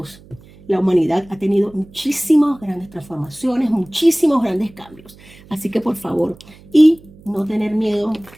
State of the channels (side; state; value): right; noise; hum, 24 dB below the sound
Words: la humanidad ha tenido muchísimas grandes transformaciones, muchísimos grandes cambios. Así que por favor, y no tener miedo.